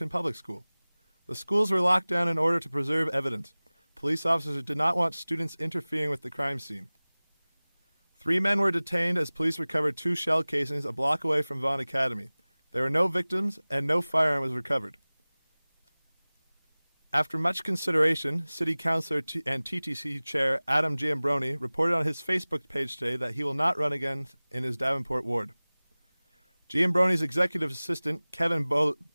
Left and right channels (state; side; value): inverted; both; correlation -0.99